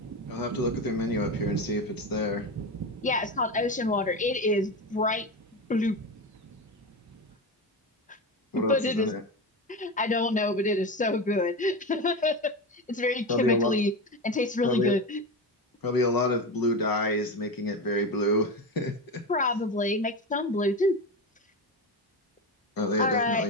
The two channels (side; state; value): both; normal; correlation 0.20